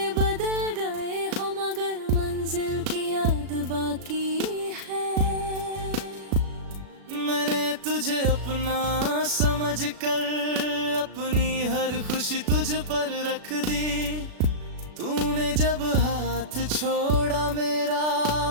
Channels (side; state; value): left; late; 36 ms